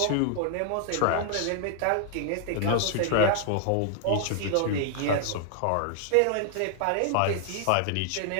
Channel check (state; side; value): different; both; correlation 0.00